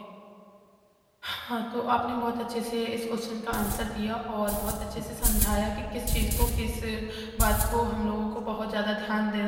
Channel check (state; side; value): identical; both; correlation 1.00